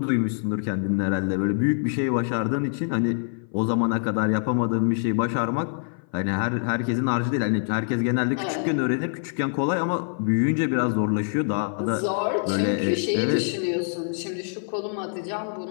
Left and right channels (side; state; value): right; silent; 57 dB below the other